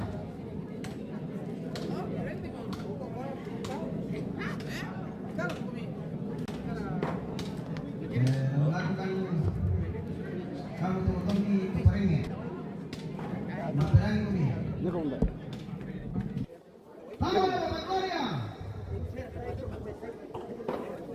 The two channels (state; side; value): identical; both; correlation 1.00